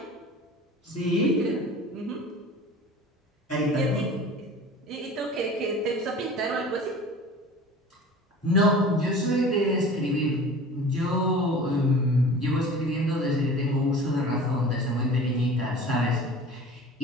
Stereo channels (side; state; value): both; normal; correlation 0.40